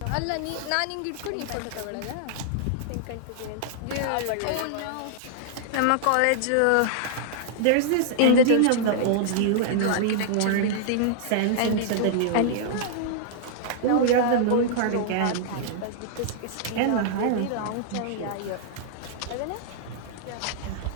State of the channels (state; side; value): different; both; correlation -0.01